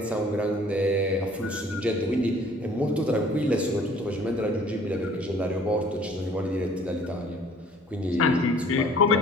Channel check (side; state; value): both; normal; correlation 0.54